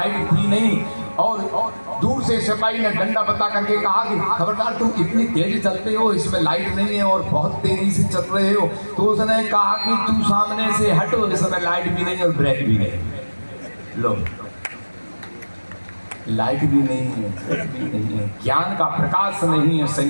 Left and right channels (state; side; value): inverted; both; correlation -1.00